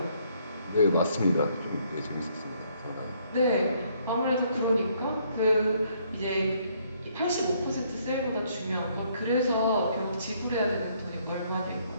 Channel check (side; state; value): both; inverted; correlation -0.68